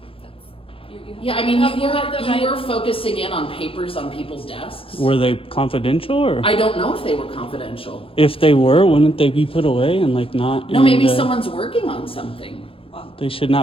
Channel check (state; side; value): late; right; 0.27 ms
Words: that's you have Yeah, I to- mean, you have the right- you were focusing in on papers on people's desks. Were they confidential or? I don't know if they were confidential. If they were, wouldn't they be put away and like not? No, in maybe the- someone's working on something. They should